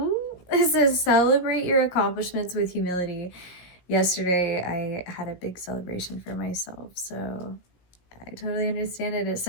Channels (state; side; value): late; right; 17 ms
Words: says celebrate your accomplishments with humility. Yesterday I had a big celebration for myself, so I totally understand it. It